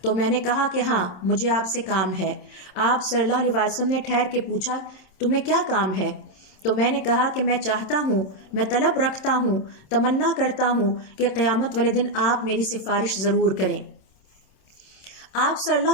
تو میں نے کہا کہ ہاں مجھے آپ سے کام ہے۔ آپ صلی اللہ علیہ وسلم نے ٹھہر کے پوچھا تمہیں کیا کام ہے؟ تو میں نے کہا کہ میں چاہتا ہوں، میں طلب رکھتا ہوں، تمنا کرتا ہوں کہ قیامت والے دن آپ میری سفارش ضرور کریں۔ آپ صلی اللہ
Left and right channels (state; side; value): late; right; 27 ms